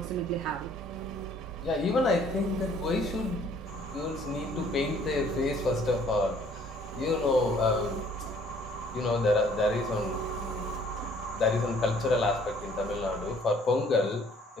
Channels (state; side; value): normal; both; correlation 0.58